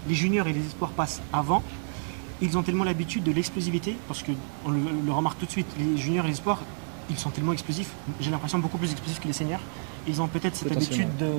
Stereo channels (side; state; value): left; silent; digital silence